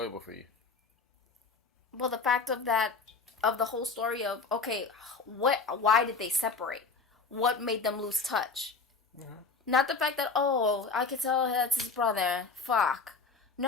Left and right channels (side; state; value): right; quieter; 4.5 dB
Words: for you? Well, the fact of the whole story of, okay, why did they separate? What made them lose touch? Mm-hmm. Not the fact that, I could tell that's his brother. Fuck.